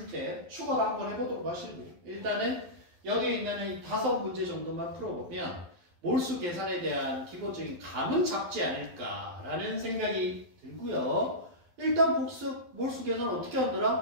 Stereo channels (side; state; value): left; late; 12 ms